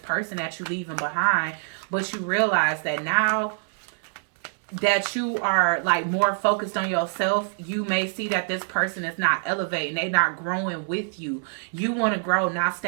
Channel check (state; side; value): silent; left; digital silence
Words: person that you leaving behind. But you realize that now that you are like more focused on yourself, you may see that this person is not elevating. They're not growing with you. You want to grow, not